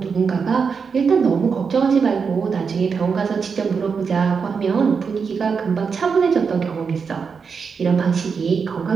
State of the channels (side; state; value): left; quieter; 5.7 dB